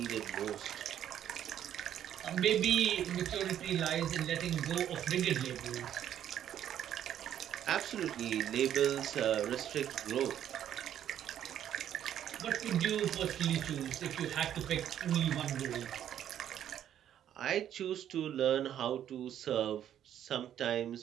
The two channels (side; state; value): left; quieter; 10.5 dB